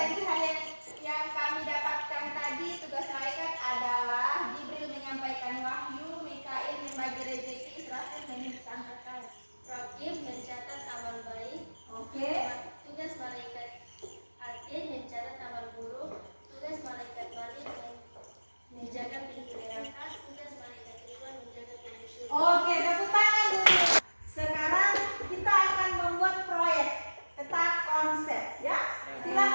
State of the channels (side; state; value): both; inverted; correlation -1.00